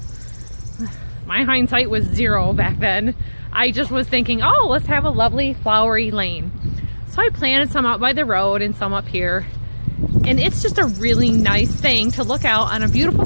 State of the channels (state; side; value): inverted; both; correlation -1.00